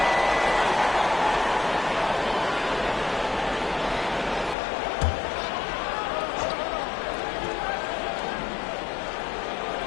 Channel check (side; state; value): right; drops out; at 4.5 s